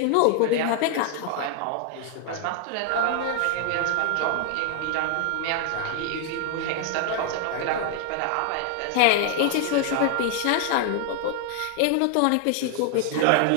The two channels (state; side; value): different; both; correlation 0.00